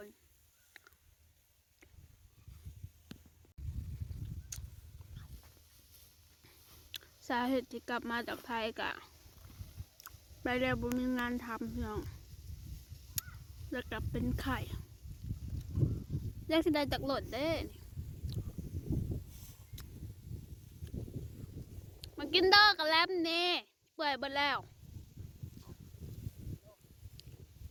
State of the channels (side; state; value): both; identical; correlation 1.00